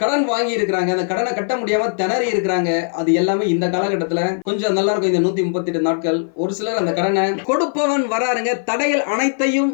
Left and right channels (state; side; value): silent; right; 56 dB below the other